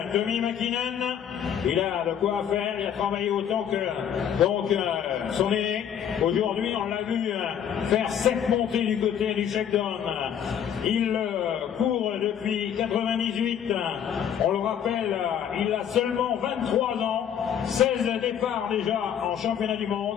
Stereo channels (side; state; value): right; quieter; 9.0 dB